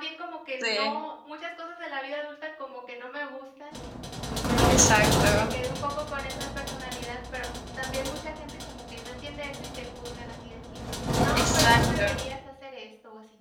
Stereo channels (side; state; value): both; identical; correlation 1.00